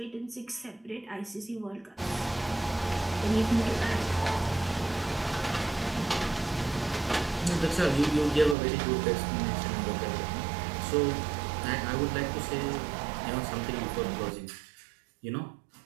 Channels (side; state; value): left; drops out; at 8.6 s